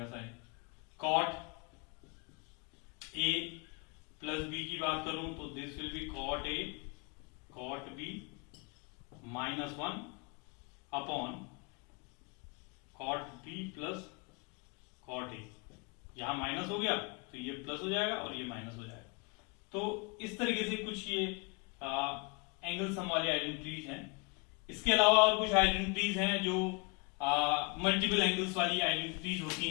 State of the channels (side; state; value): right; quieter; 32.4 dB